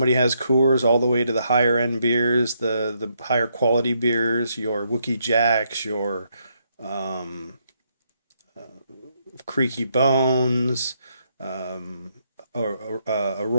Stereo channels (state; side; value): inverted; both; correlation -0.76